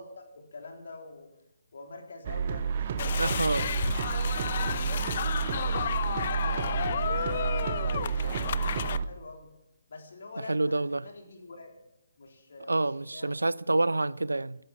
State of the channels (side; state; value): both; inverted; correlation -0.80